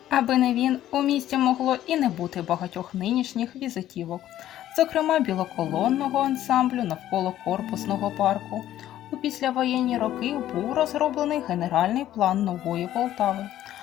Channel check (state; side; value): quieter; right; 12.7 dB